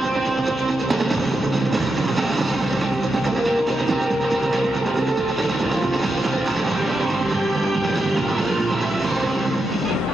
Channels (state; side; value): normal; both; correlation 0.86